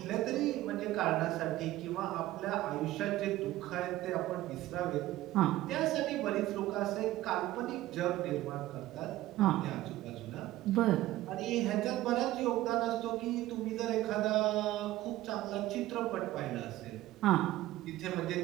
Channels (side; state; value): left; quieter; 15.8 dB